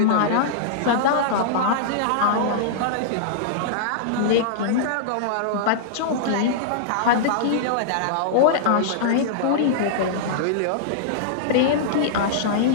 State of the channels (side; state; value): both; different; correlation -0.02